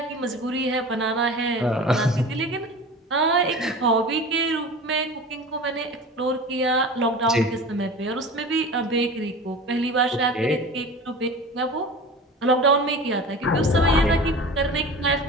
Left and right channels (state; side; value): normal; both; correlation 0.35